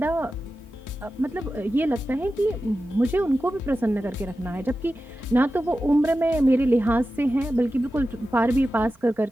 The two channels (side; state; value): both; normal; correlation 0.93